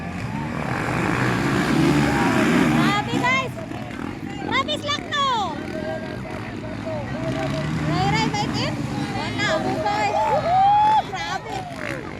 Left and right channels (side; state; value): both; identical; correlation 1.00